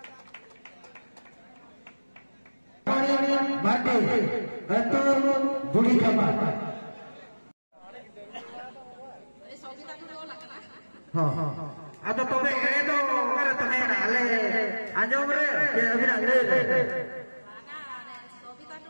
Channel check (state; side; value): inverted; both; correlation -1.00